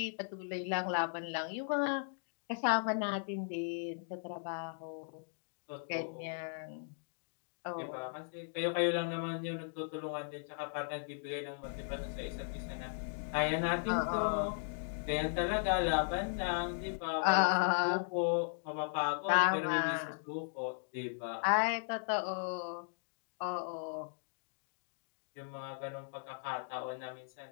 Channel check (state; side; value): silent; right; digital silence